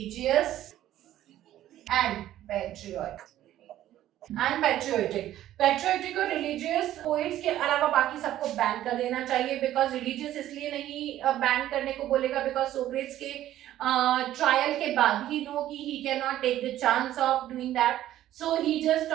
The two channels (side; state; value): left; quieter; 13.1 dB